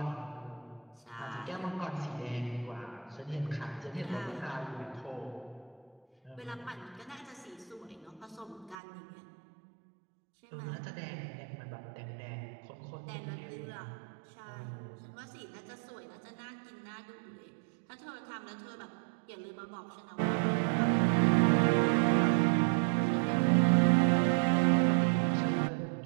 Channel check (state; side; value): drops out; left; at 8.8 s